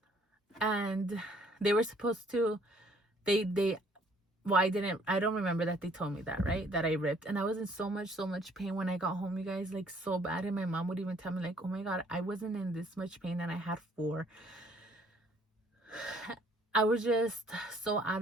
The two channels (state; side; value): normal; both; correlation 0.61